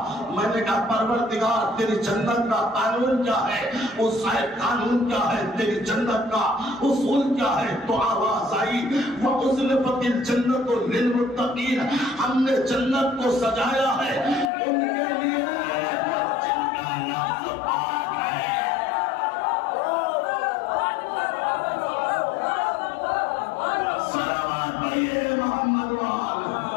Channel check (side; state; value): right; drops out; at 14.5 s